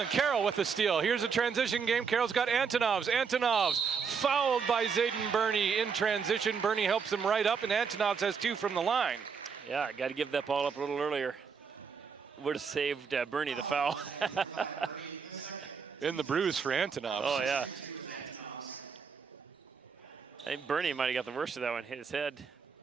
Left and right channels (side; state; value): left; quieter; 6.1 dB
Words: Carroll with the steal. Here's a transition game. Carroll's got Antonovs. Antonovs fouled by Zayden Burney in transition. Burney helps him right up, and Antonovs has 2 from the line. Yeah, got to give that ball up a little earlier. Would have saved Burney the foul. In the bruise for Antonovs. Oh, yeah. I think Burney might have got the worst of that one, hit his head.